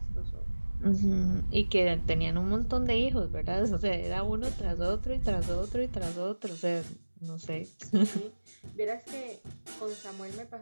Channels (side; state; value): both; inverted; correlation -1.00